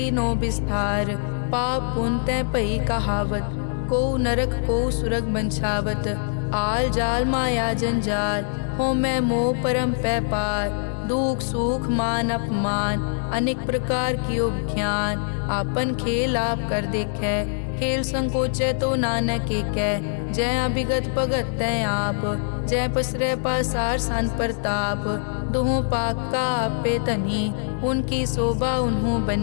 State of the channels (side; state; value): right; silent; 63 dB below the other